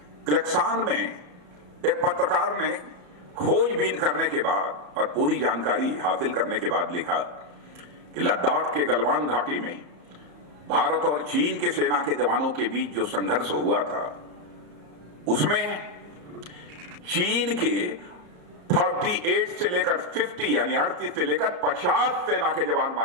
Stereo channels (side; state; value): left; late; 34 ms